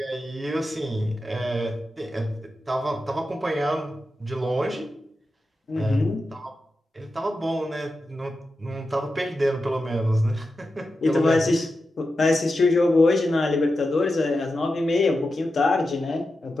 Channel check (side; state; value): both; normal; correlation 0.90